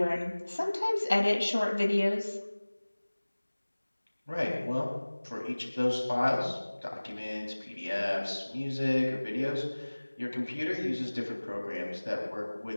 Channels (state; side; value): inverted; both; correlation -1.00